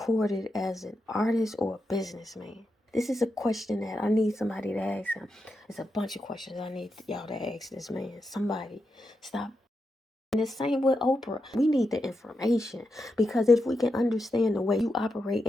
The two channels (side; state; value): both; normal; correlation 0.87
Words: as an artist or a businessman? This is a question that I need somebody to ask him. It's a bunch of questions I need y'all to ask this man. Somebody stop. And the same with Oprah. We need the information, because if we can understand the way you operate